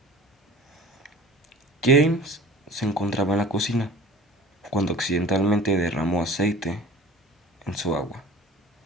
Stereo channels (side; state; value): both; normal; correlation 0.42